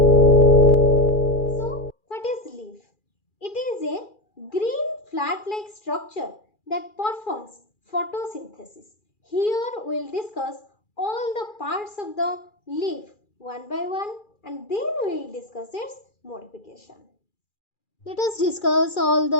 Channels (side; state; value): right; late; 2.4 ms